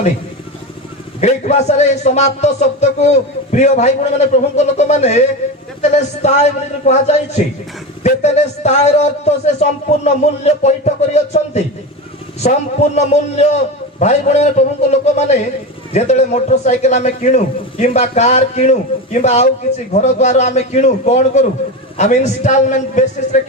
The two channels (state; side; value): normal; both; correlation 0.21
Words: ଗ୍ରୀକ ଭାଷାରେ ଏହି ସମାପ୍ତ ଶବ୍ଦକୁ ପ୍ରିୟ ଭାଇ ଭଉଣୀ ମାନେ ପ୍ରଭୁଙ୍କ ଲୋକମାନେ ତେତେଲେସ୍ତାଇ ବୋଲି କୁହାଯାଇଛି। ତେତେଲେସ୍ତାଇର ଅର୍ଥ ସେ ସମ୍ପୂର୍ଣ୍ଣ ମୂଲ୍ୟ ପଇଠ କରିଅଛନ୍ତି। ସମ୍ପୂର୍ଣ୍ଣ ମୂଲ୍ୟ ଭାଇ ଭଉଣୀ ପ୍ରଭୁଙ୍କ ଲୋକମାନେ ଯେତେବେଳେ ମୋଟର ସାଇକେଲ ଆମେ କିଣୁ କିମ୍ବା କାର କିଣୁ କିମ୍ବା ଆଉ କିଛି ଘର ଦ୍ୱାର ଆମେ କିଣୁ କଣ କରୁ ଆମେ ଇନଷ୍ଟଲମେଣ୍ଟ ବେସିସରେ